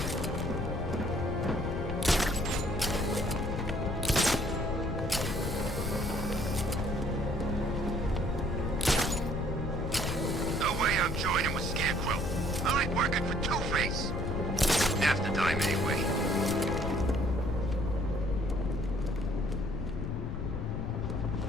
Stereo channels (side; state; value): left; noise; rumble, 3 dB below the sound